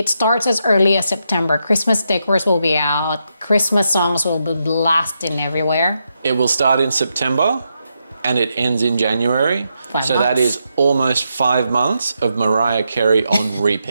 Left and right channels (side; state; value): both; inverted; correlation -0.83